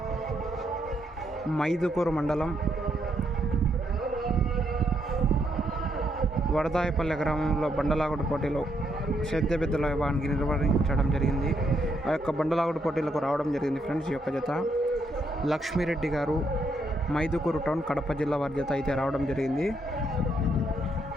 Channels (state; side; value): normal; both; correlation 0.76